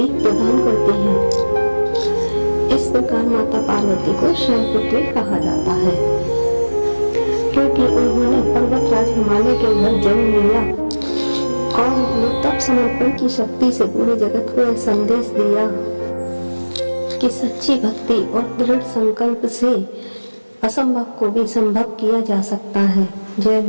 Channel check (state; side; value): inverted; both; correlation -1.00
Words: प्रदान करती हैं। इस प्रकार माता पार्वती को शैलपुत्री कहा जाता है, क्योंकि उन्होंने पर्वतराज हिमालय के घर जन्म लिया और उन्होंने तप समर्पण की शक्ति से पूरे जगत को यह संदेश दिया कि सच्ची भक्ति और दृढ़ संकल्प से असंभव को भी संभव किया जा सकता है। जय